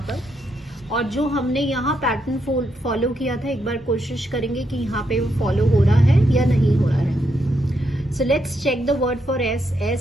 पर, और जो हमने यहाँ पैटर्न फॉलो किया था एक बार कोशिश करेंगे कि यहाँ पे वो फॉलो हो रहा है या नहीं हो रहा है। So let's check the word for S।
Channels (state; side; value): normal; both; correlation 0.80